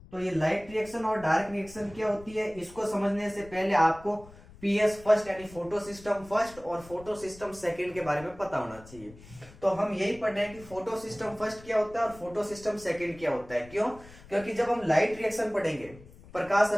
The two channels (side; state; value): left; noise; rumble, 20 dB below the sound